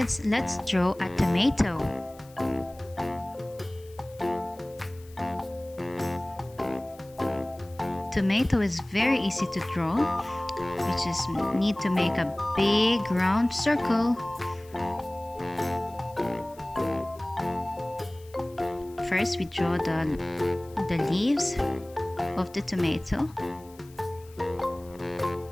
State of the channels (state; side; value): noise; left; hiss, 25 dB below the sound